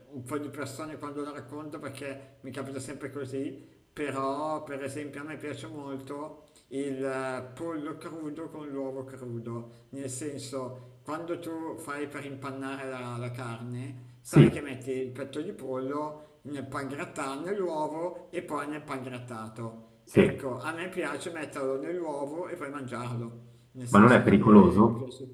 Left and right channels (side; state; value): both; identical; correlation 1.00